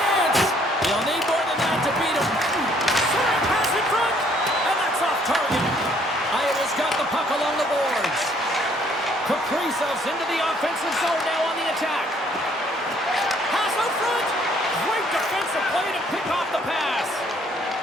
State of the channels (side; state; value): both; normal; correlation 0.64